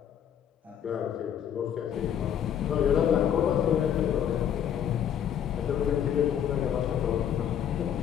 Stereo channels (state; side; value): quieter; right; 9.2 dB